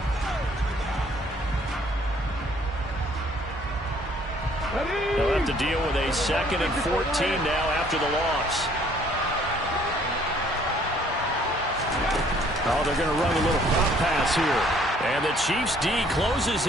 to deal with a 2nd and 14 now after the loss. Oh, they're going to run a little pop pass here. And the Chiefs D closes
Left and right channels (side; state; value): both; normal; correlation 0.60